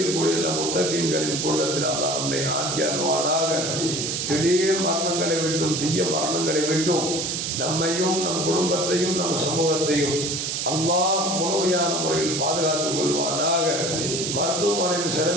முத்தகீன்களின் கூட்டத்தில் அல்லாஹ் நம்மை ஆக்கி அருள்வானாக. திடீர் மரணங்களை விட்டும் தீய மரணங்களை விட்டும் நம்மையும் நம் குடும்பத்தையும் நம் சமூகத்தையும் அல்லாஹ் முழுமையான முறையில் பாதுகாத்துக் கொள்வானாக. மருத்துவமனையின்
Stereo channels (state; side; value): noise; right; hiss, 2 dB below the sound